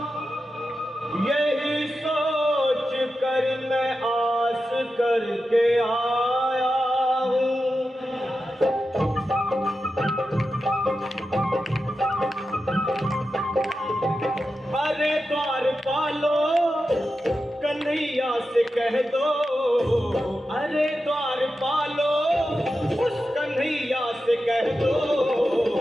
यही सोच कर मैं आस करके आया हूँ। अरे द्वारपालो कन्हैया से कह दो, अरे द्वारपालो उस कन्हैया से कह दो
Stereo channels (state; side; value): normal; both; correlation 0.91